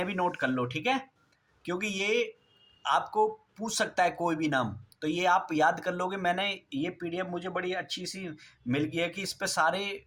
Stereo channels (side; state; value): both; identical; correlation 1.00